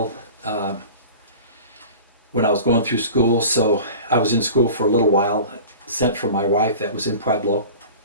when I was going through school. So I was in school for a little while, sent for my wife that was in Pueblo.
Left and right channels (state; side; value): inverted; both; correlation -0.38